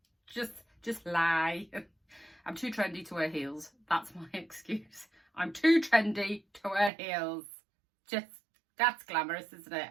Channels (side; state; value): left; drops out; at 6.9 s